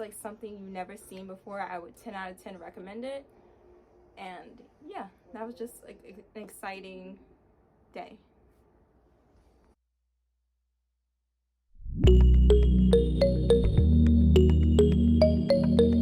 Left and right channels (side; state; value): both; identical; correlation 1.00